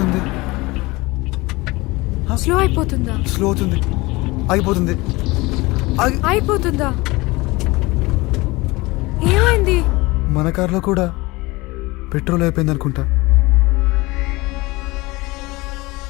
స్లో అయిపోతుందా? స్లో అవుతుంది, ఆగిపోతుంది. అయిపోతుందా? ఏమైంది? మన కార్లో కూడా పెట్రోల్ అయిపోయింది అనుకుంటా.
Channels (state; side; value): quieter; right; 22.4 dB